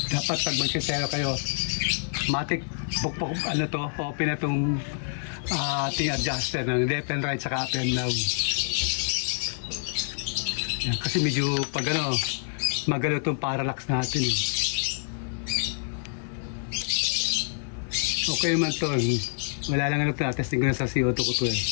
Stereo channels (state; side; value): silent; right; 60 dB below the other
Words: dapat pag magsisero kayo, matik bukbok ano to, open na itong ating adjuster ng left and right saka up and down. Yan, kasi medyo pag ano, magalo itong parallax natin. Okay man to. Wala lang ano to. Testing ko na sa CO2 ko to eh.